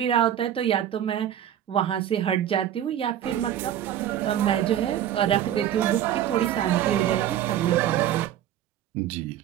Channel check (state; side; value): quieter; left; 11.0 dB